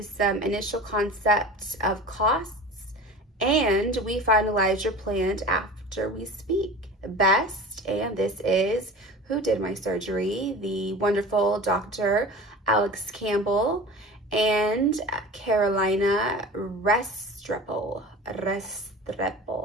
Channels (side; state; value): both; normal; correlation 0.36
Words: some initial concept of costs, and we finalize your plan after we speak. Best, and this is who did my surgery, the wonderful Dr. Alex Campbell and Carolina Restrepo.